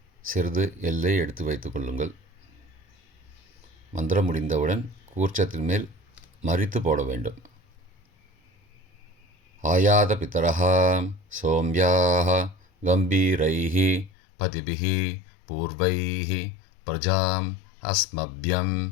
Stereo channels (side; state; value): right; drops out; at 14.1 s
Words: சிறிது எல்லை எடுத்து வைத்துக் கொள்ளுங்கள். மந்திரம் முடிந்தவுடன் கூர்ச்சத்தின் மேல் மரித்து போட வேண்டும். ஆயாத பிதரஹ சோம்யாஹ கம்பீரைஹ பதிபிஹ பூர்வைஹ பிரஜாம் அஸ்மப்யம்